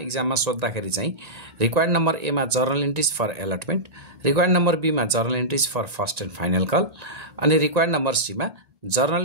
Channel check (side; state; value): left; late; 1.8 ms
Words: सोध्दाखेरि चाहिँ रिक्वायर्ड नम्बर ए मा journal entries for allotment, required number B मा journal entries for first and final call अनि रिक्वायर्ड नम्बर सी मा